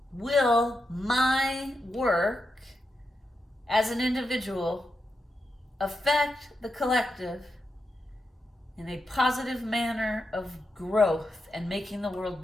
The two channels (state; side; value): normal; both; correlation 0.86